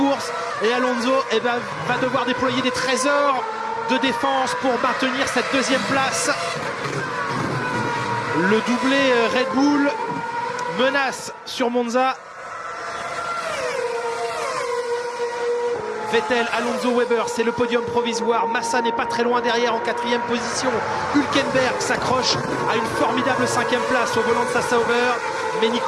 Et Alonso va devoir déployer des trésors de défense pour maintenir cette deuxième place. Le doublé Red Bull menace sur Monza. Vettel, Alonso, Weber, c'est le podium provisoire. Massa n'est pas très loin derrière en 4e position. Hülkenberg s'accroche à une formidable 5e place au volant de sa Sauber. Mais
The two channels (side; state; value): both; identical; correlation 1.00